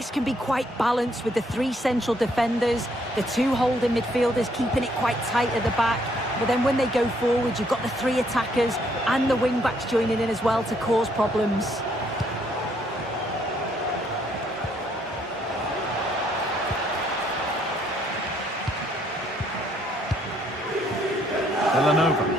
can be quite balanced with the three central defenders, the two holding midfielders keeping it quite tight at the back. But then when they go forward, you've got the three attackers and the wing-backs joining in as well to cause problems.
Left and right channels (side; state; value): both; normal; correlation 0.69